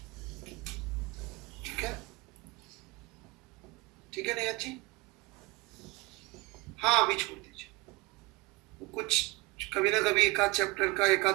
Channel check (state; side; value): quieter; left; 23.1 dB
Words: ठीक है, ठीक है निगत जी। हाँ अभी छोड़ दीजिए, कुछ कभी ना कभी एक आध चैप्टर का एक